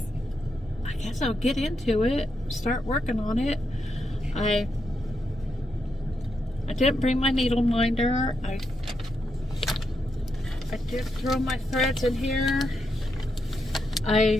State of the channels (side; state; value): both; normal; correlation 0.82